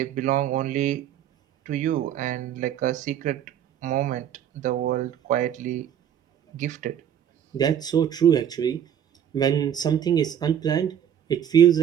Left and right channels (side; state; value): left; quieter; 9.6 dB